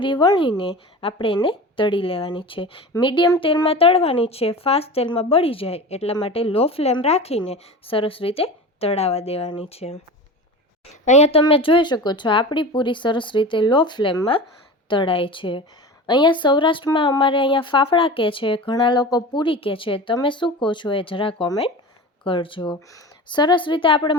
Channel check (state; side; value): normal; both; correlation 0.32